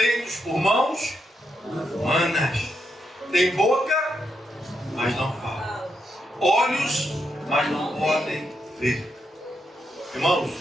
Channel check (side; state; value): both; normal; correlation 0.82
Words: por mãos humanas. Tem boca, mas não falam. Olhos, mas não podem ver. Irmãos,